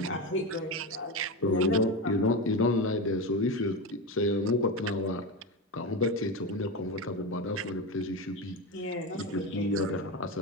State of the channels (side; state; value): both; normal; correlation 0.18